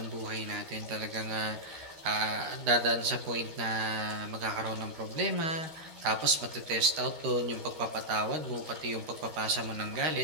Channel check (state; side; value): late; left; 13 ms